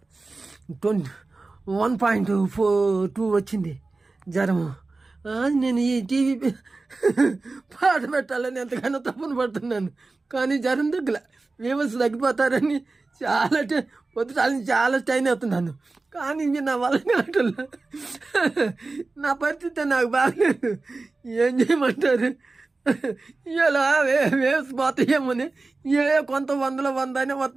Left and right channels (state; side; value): quieter; left; 3.5 dB